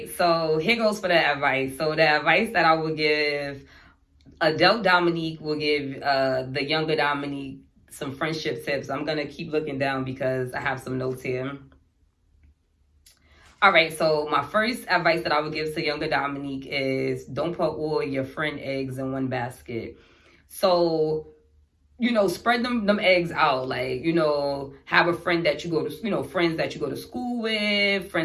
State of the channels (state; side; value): identical; both; correlation 1.00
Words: so here goes for the advice. So the advice that I would give, adult Dominique will give the younger Dominique some friendship tips. I'm gonna keep looking down because I have some notes here. All right, so my first advice that I would give to younger Dominique is don't put all your friend eggs in one basket. So, spread them eggs out. Like, have a friend that you go to, friends that you go to school with,